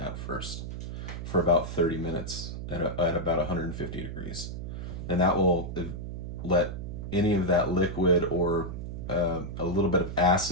first for about 30 minutes at about 150 degrees. And that will let any of that liquid or a little bit of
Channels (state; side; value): noise; right; hum, 7 dB below the sound